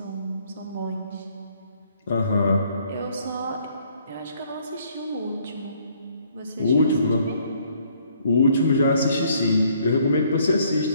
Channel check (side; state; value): both; inverted; correlation -0.65